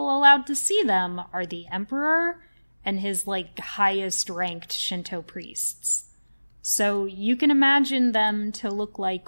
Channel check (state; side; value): inverted; both; correlation -0.99